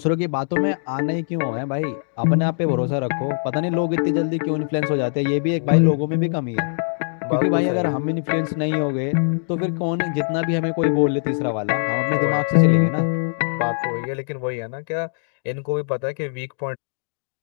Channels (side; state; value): right; silent; digital silence